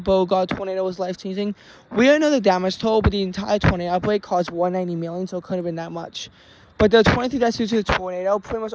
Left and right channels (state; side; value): identical; both; correlation 1.00